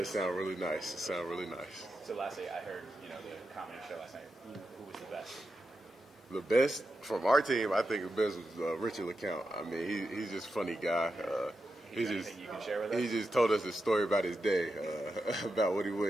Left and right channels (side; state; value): both; normal; correlation 0.88